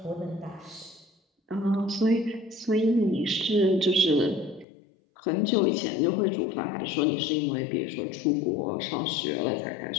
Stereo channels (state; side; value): drops out; right; at 4.7 s